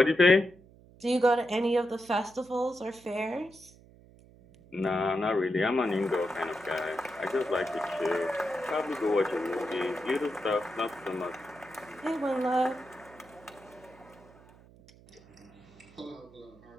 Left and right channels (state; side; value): noise; right; hum, 24 dB below the sound